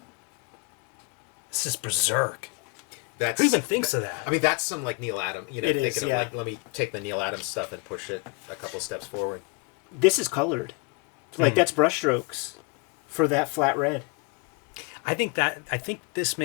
This is berserk. That's, Who even thinks of that? I mean, that's some like Neil Adams, you know, It thinking is, of yeah. like, let me take the Neil Adams stuff and push it a couple steps forward. This is colored. Like, that's brushstrokes for that flat red. I think this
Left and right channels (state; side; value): quieter; right; 30.2 dB